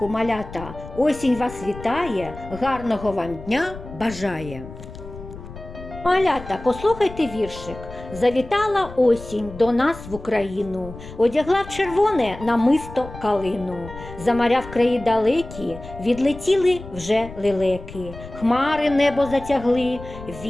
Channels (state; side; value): noise; left; rumble, 14 dB below the sound